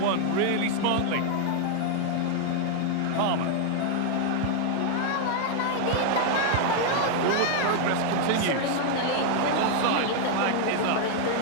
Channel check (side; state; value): both; different; correlation 0.00